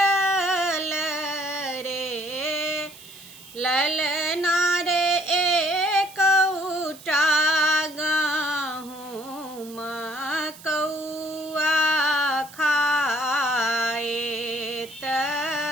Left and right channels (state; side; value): noise; right; hiss, 19 dB below the sound